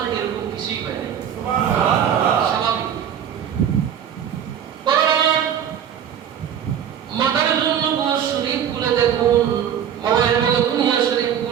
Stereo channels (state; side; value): quieter; left; 9.0 dB